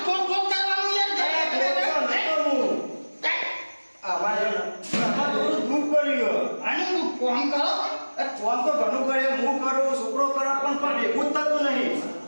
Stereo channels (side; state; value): both; inverted; correlation -1.00